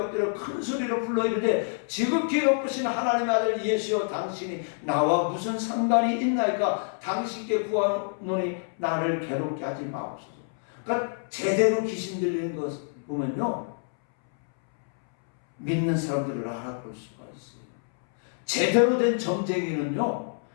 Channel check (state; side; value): silent; right; 60 dB below the other